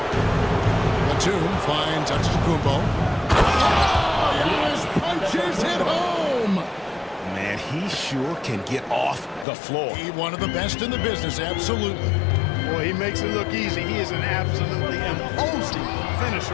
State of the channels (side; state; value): right; drops out; at 9.5 s